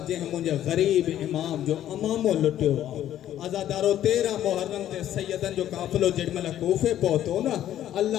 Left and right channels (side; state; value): right; quieter; 11.8 dB